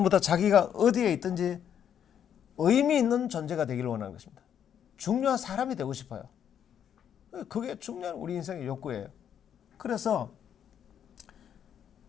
다 자기가 어디에 있든지 의미 있는 존재가 되기를 원하는 것입니다. 중요한 사람이 되고 싶어요. 그게 중요한 우리 인생의 욕구예요. 그래서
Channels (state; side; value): quieter; right; 9.0 dB